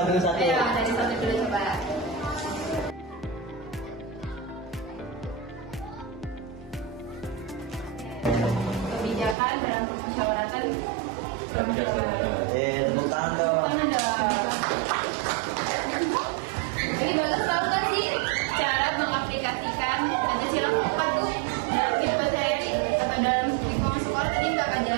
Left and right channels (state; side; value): drops out; left; at 9.3 s